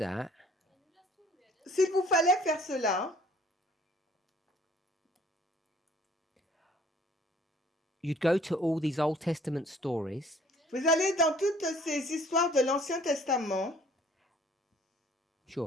S'il vous fallait faire cela, you'd go to all these Old Testament stories vous allez dans toutes ces histoires de l'Ancien Testament.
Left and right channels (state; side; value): normal; both; correlation 0.56